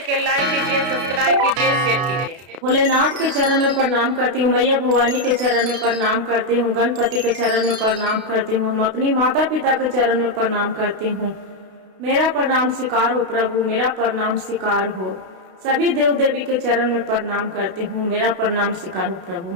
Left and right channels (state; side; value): late; left; 32 ms